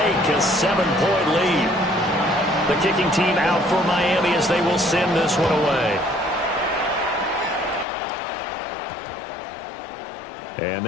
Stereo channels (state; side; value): drops out; right; at 7.9 s